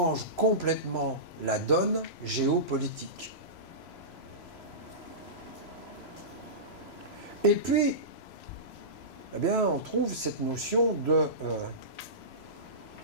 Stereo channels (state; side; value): late; right; 3.0 ms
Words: complètement la donne géopolitique. Et puis, eh bien, on trouve cette notion de